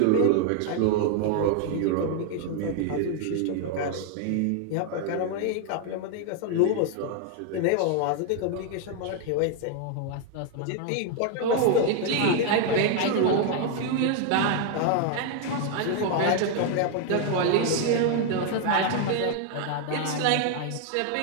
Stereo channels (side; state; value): both; different; correlation 0.00